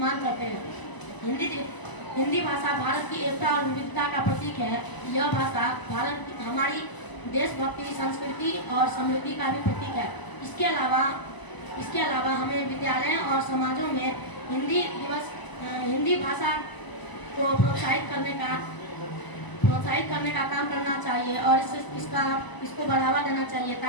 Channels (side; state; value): right; late; 1.0 ms